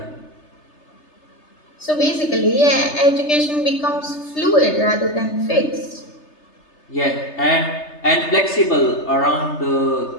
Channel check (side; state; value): right; late; 3.3 ms